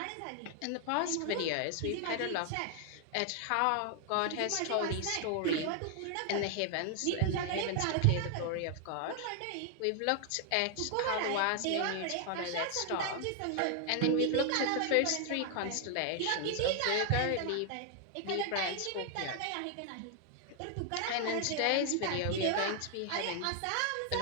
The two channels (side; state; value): both; different; correlation 0.00